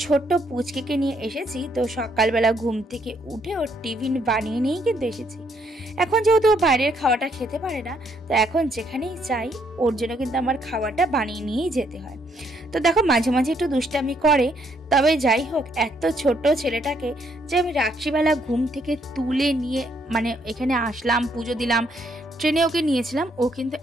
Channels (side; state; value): both; normal; correlation 0.71